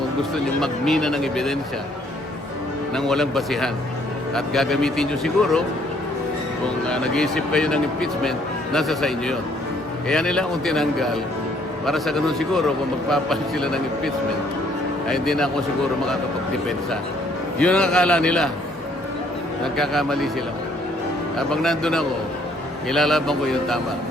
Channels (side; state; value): both; normal; correlation 0.64